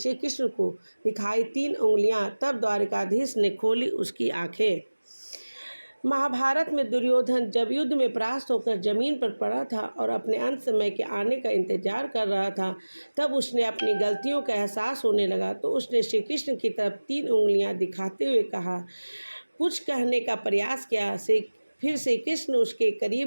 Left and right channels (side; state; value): both; inverted; correlation -1.00